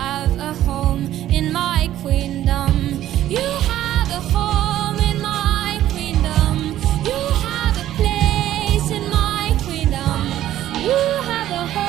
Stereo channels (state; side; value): quieter; left; 12.9 dB